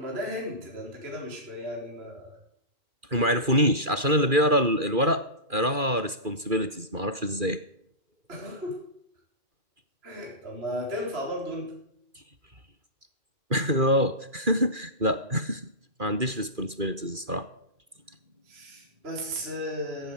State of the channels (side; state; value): left; late; 2.4 ms